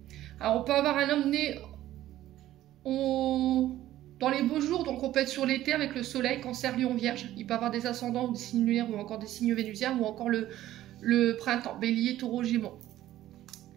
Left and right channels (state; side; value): quieter; left; 13.9 dB